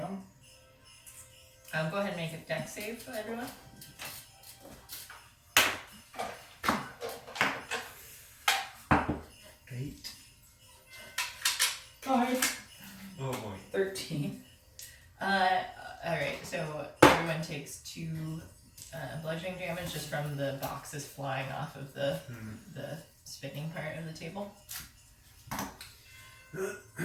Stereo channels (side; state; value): both; identical; correlation 1.00